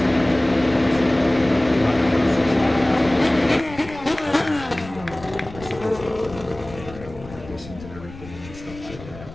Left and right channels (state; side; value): noise; left; rumble, 16 dB below the sound